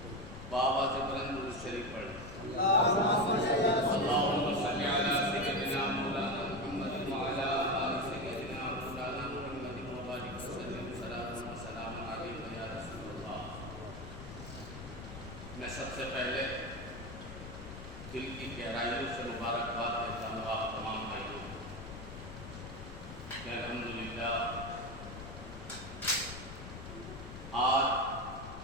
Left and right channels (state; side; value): noise; left; rumble, 11 dB below the sound